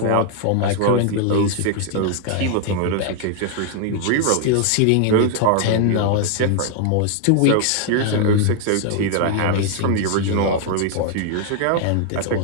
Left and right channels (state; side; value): different; both; correlation 0.00